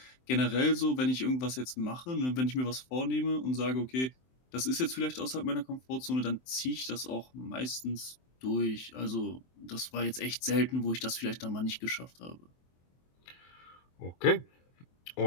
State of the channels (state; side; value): late; right; 23 ms